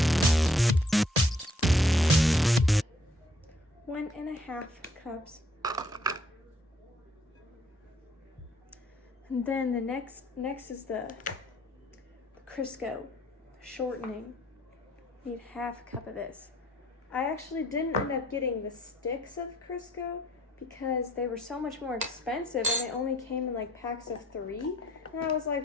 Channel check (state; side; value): normal; both; correlation 0.64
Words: 1.5 cups. And then the next is the Crisco shortening. Need 1/2 cup of this. I actually didn't end up getting the sticks of Crisco because they were so much more expensive and they only came in like packs of 3. And I was